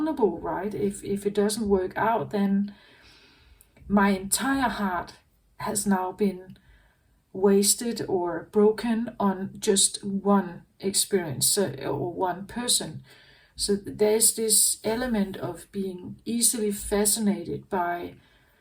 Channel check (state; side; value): identical; both; correlation 1.00